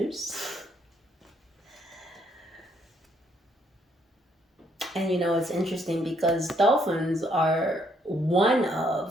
And you know, it's interesting because dolphins are one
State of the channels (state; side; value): normal; both; correlation 0.70